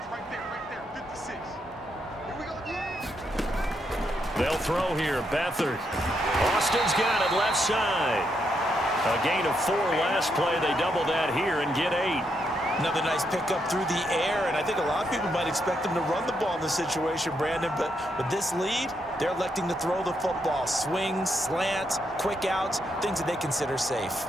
Right there. 56. Here we go again. They'll throw here. Beathard. Austin's got it left side. A gain of 4 last play. They double that here and get 8. Another nice pickup through the air, and I think a lot of people might expect them to run the ball in this situation, Brandon, but with this lead, they're electing to throw the football. Swings, slants, quick outs, things that they consider safe.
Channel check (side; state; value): both; normal; correlation 0.79